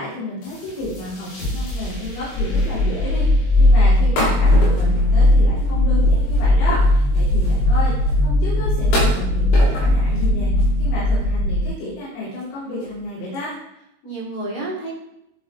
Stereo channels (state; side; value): late; right; 21 ms